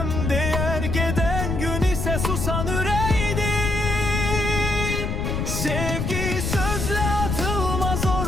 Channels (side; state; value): left; noise; rumble, 2 dB below the sound